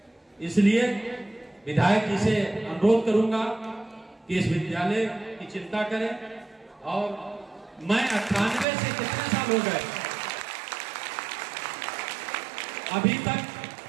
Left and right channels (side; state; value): left; drops out; at 8.7 s